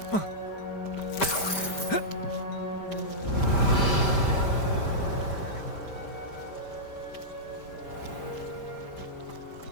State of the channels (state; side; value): late; right; 5.1 ms